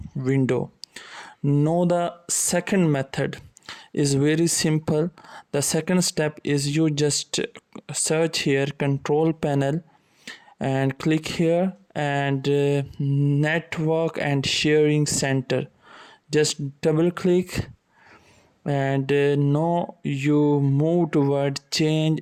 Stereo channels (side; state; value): both; identical; correlation 1.00